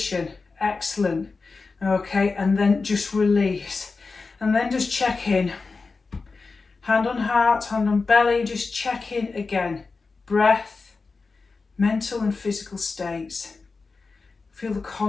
Excellent. Okay, and then just release. And then just check in. Hand on heart, hand on belly, just check in again. Breath, mental and physical states. Feel the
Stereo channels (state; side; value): quieter; right; 4.2 dB